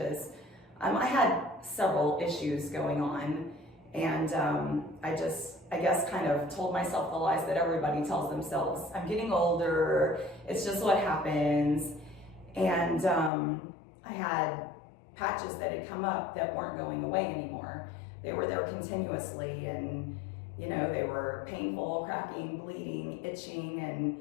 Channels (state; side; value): drops out; right; at 13.3 s